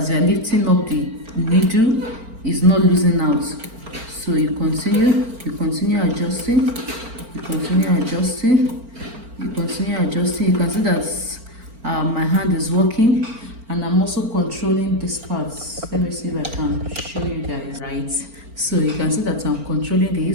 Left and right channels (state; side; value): late; left; 4.4 ms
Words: you are lifting up the needle, it's not losing out. So you continue adjusting, you continue adjusting, you continue adjusting. You can see that my hand is working, and I'm also controlling this part. Let me see if I can show you guys right. So you can see that I'm controlling